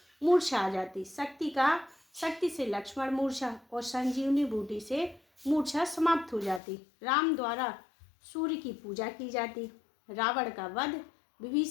मूर्छा आ जाती। शक्ति से लक्ष्मण मूर्छा और संजीवनी बूटी से मूर्छा समाप्त हो जाती। राम द्वारा सूर्य की पूजा की जाती। रावण का वध,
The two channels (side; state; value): right; drops out; at 6.6 s